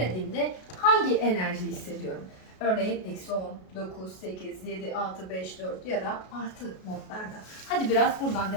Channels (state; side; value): late; right; 33 ms